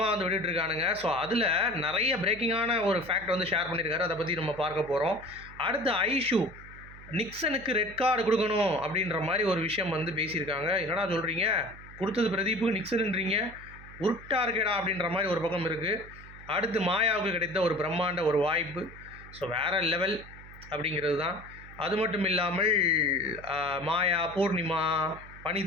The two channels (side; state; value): right; noise; hum, 18 dB below the sound